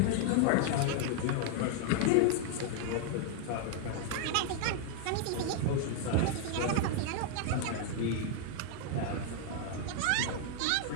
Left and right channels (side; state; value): both; different; correlation 0.00